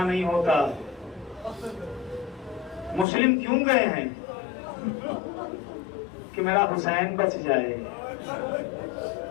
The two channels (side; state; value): right; drops out; at 3.1 s